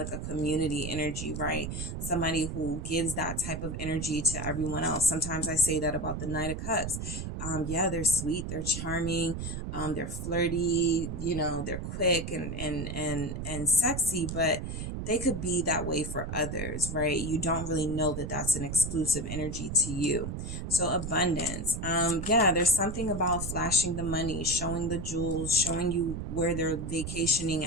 a community energy, right? Somebody who gives that type of energy to everyone else. Sometimes I say that about the Knight of Cups. Yeah, they're sweet, they're charming, they're flirty, you know, they're quick and sexy, but they could be that way for others, right? You don't really know that that's an exclusive energy to you. So abundance. Yeah, there's something about flashing the money, showing the jewels, showing you where they're vacationing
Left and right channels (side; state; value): right; noise; rumble, 5 dB below the sound